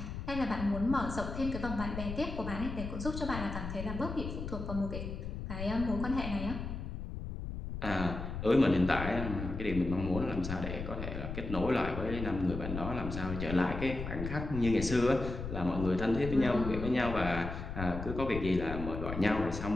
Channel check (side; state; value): left; noise; rumble, 6 dB below the sound